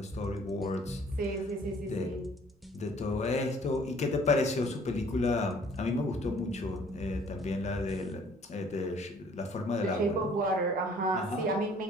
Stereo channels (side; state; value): both; normal; correlation 0.56